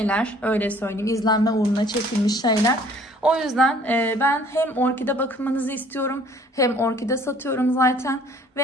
öyle söyleyeyim, izlenme uğruna çekilmiş şeyler. O yüzden ben hem orkide bakımınızı istiyorum, hem orkide satıyorum zaten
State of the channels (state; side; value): normal; both; correlation 0.56